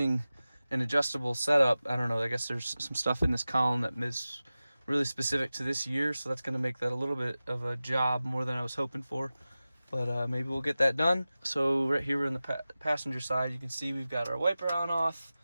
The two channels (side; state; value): both; inverted; correlation -0.96